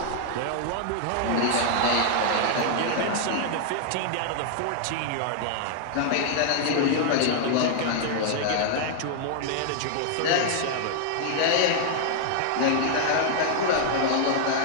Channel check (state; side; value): different; both; correlation -0.01